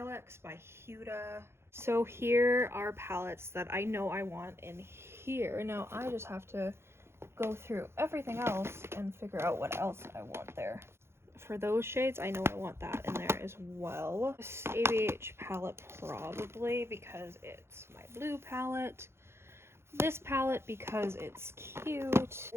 by Huda. So here are palettes that I know I want in here. Now I just have to go through everything else and figure out what else I want there. For those shades, I know I want that in there as well. This ABH palette probably because it's my blue palette. This palette because it's cute.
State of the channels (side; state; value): left; late; 0.12 ms